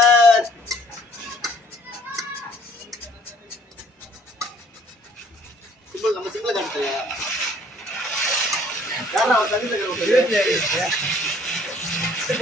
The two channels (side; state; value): both; normal; correlation 0.58